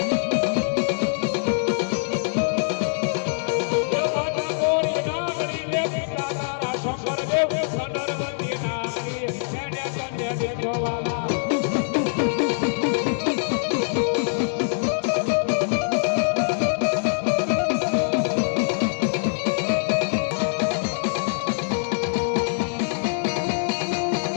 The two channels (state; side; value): silent; right; digital silence